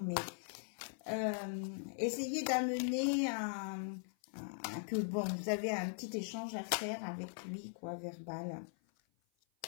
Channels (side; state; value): right; silent; 51 dB below the other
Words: mais essayez d'amener que bon, vous avez un petit échange à faire avec lui, quoi, verbal.